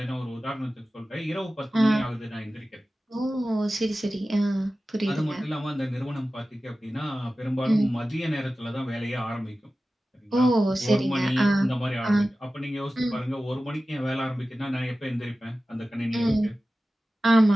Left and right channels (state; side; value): normal; both; correlation 0.95